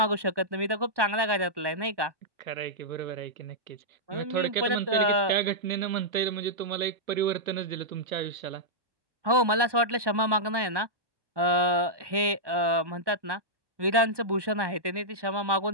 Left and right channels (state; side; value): late; left; 1.2 ms